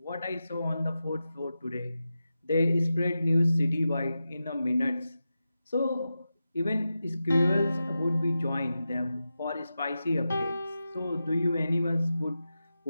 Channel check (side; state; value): both; inverted; correlation -0.91